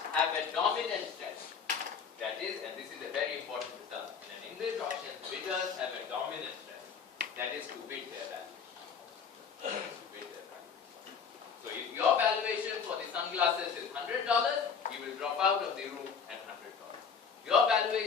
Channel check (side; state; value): right; quieter; 6.4 dB